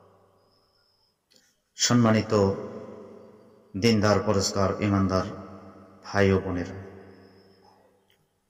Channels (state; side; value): identical; both; correlation 1.00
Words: সম্মানিত দিনদার পরেশগার ঈমানদার ভাই ও বোনেরা,